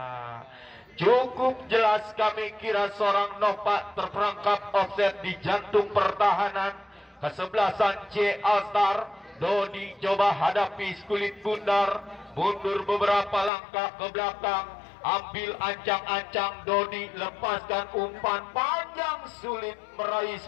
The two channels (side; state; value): right; drops out; at 13.5 s